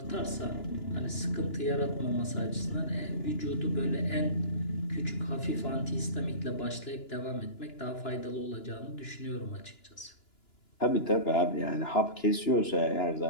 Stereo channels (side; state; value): right; late; 2.9 ms